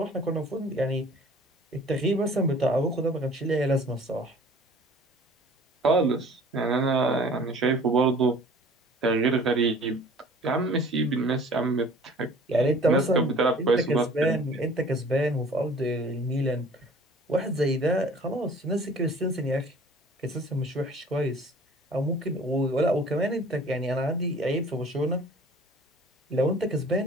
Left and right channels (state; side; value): normal; both; correlation 0.49